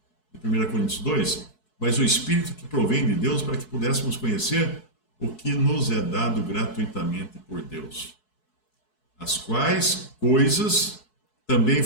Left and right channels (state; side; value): late; right; 4.7 ms